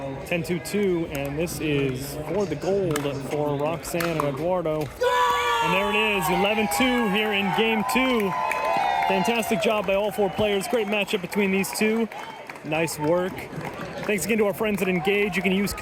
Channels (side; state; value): both; identical; correlation 1.00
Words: 10-2-2, and this is for the gold for Roxanne and Eduardo. And there it is, 11-2 here in game 2. Fantastic job by all 4 players. Great matchup between these two. Nice work. Thanks again to our friends at Engage. You can use